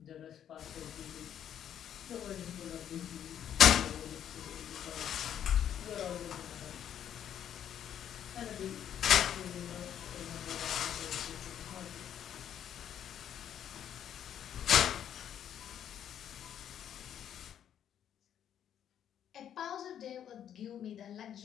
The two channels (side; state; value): right; quieter; 9.8 dB